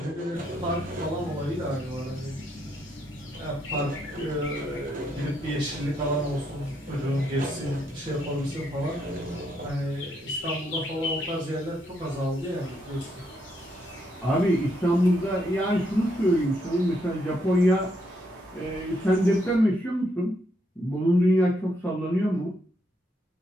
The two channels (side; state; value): both; normal; correlation 0.76